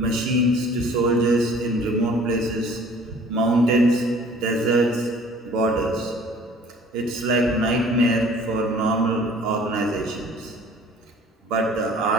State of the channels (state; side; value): normal; both; correlation 0.51